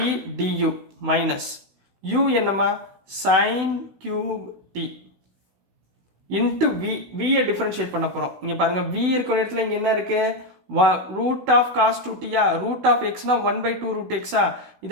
du மைனஸ் u என்னம்மா? சைன் கியூப் டி இன்ட்டு வியை டிஃப்ரென்ஷியேட் பண்ண போகிறோம். இங்கே பாருங்கள், v இருக்கிற இடத்துல இங்கே என்ன இருக்குது? ரூட் ஆஃப் காஸ் 2tயா? ரூட் ஆஃப் எக்ஸ்னா 1/2 ரூட் எக்ஸா?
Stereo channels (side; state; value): left; late; 16 ms